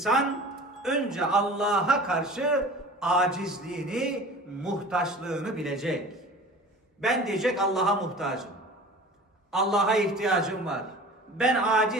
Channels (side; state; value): both; normal; correlation 0.40